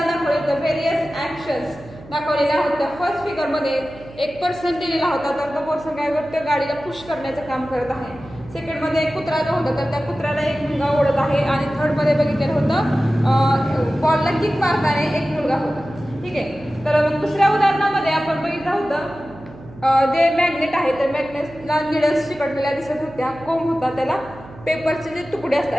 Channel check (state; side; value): noise; right; hum, 19 dB below the sound